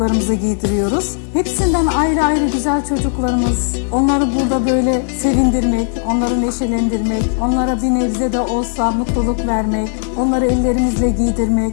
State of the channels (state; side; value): silent; right; digital silence